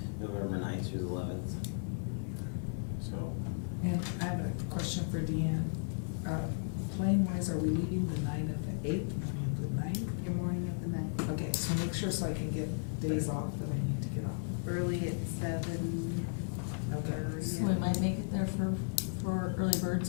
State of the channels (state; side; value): silent; right; 54 dB below the other